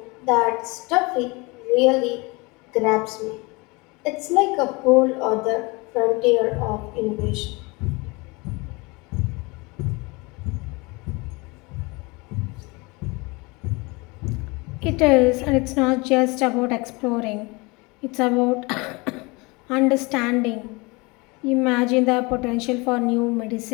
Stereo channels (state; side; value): quieter; right; 26.2 dB